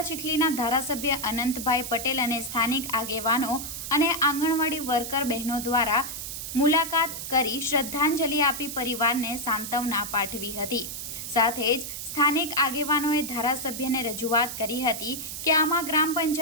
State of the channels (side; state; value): right; noise; hiss, 7 dB below the sound